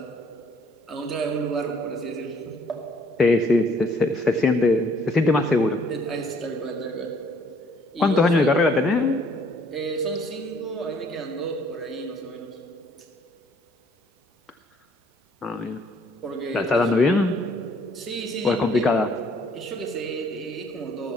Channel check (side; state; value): both; normal; correlation 0.62